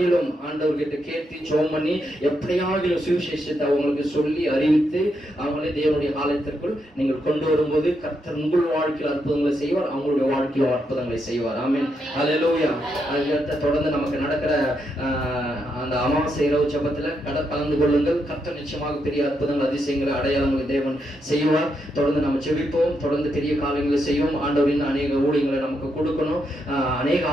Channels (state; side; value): normal; both; correlation 0.81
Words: ஆண்டவர்கிட்ட கேட்டு ஜெபம் பண்ணி எப்படியாகிலும் சுவிசேஷத்தை அவங்களுக்கு சொல்லி அறிவித்து அவங்களே தேவனுடைய ஆலயத்திற்குள் நீங்கள் கொண்டு வரும்போது கர்த்தர் உங்கள் வாழ்க்கையில் அற்புதங்களை செய்வார், அவங்களுடைய வாழ்க்கையில் அற்புதங்களை செய்வார். ஆமென். ஹல்லேலூயா. அதுக்கடுத்து தொடர்ந்து நமக்கு நடக்கிற அந்த அமாவாசை இரவு ஜெபத்துல கலந்து கொள்ளுங்கள். கர்த்தர் நிச்சயமாக பெரிய அற்புதங்கள், அதிசயங்களை, அடையாளங்களை தேவன் செய்வார். தொடர்ந்து நம்ம ஜெபிப்போம். தொடர்ந்து பெரிய காரியங்களை செய்வோம். ஆண்டவரின் அநேக ஊழியங்களை நமக்கு கொடுக்கணும், அநேக